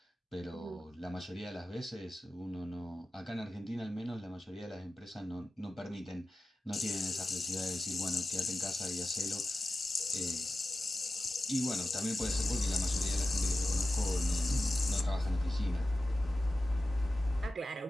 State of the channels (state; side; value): normal; both; correlation 0.94